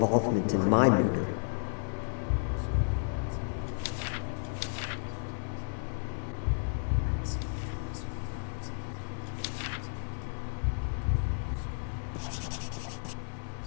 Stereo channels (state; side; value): silent; right; 56 dB below the other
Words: in my murder.